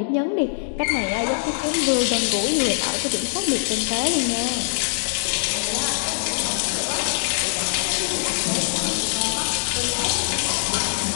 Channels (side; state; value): right; silent; digital silence